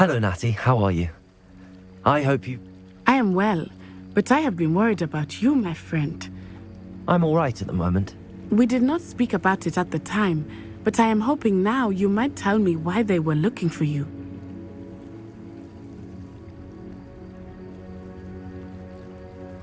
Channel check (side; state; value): both; identical; correlation 1.00